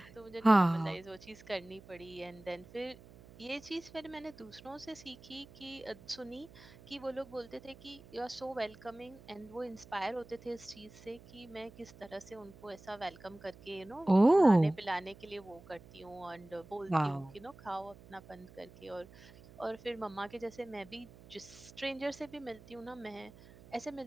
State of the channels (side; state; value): right; noise; hum, 20 dB below the sound